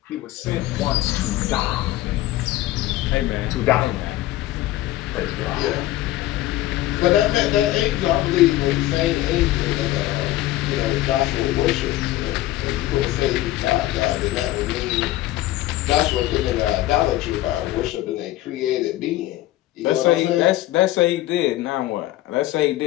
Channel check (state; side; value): quieter; right; 15.6 dB